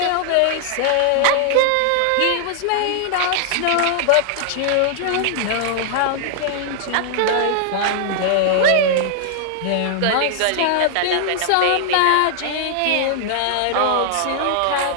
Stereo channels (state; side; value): different; both; correlation -0.01